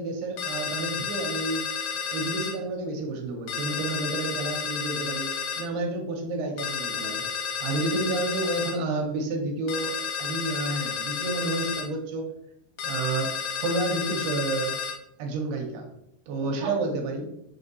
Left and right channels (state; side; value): normal; both; correlation 0.08